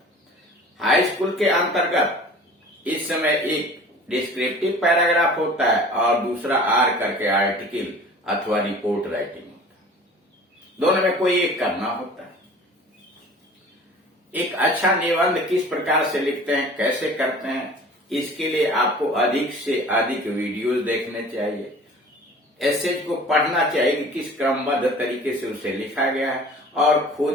हाई स्कूल के अंतर्गत इस समय एक डिस्क्रिप्टिव पैराग्राफ होता है और दूसरा आर करके आर्टिकल अथवा रिपोर्ट राइटिंग होता है। दोनों में कोई एक करना होता है। एक अच्छा निबंध किस प्रकार से लिखते हैं, कैसे करते हैं, इसके लिए आपको अधिक से अधिक वीडियोस देखने चाहिए। एस्से को पढ़ना चाहिए कि किस क्रमबद्ध तरीके से उसे लिखा गया है और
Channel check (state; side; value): normal; both; correlation 0.44